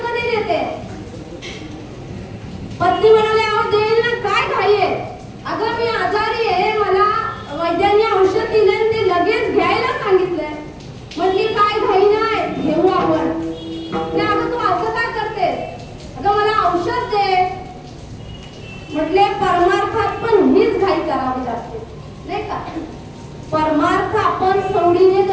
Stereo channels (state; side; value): identical; both; correlation 1.00